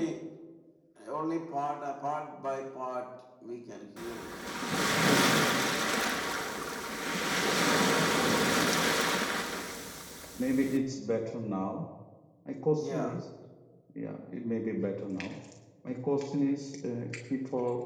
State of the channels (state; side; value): identical; both; correlation 1.00